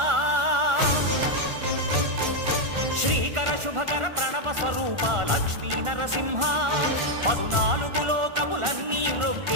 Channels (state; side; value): late; left; 1.4 ms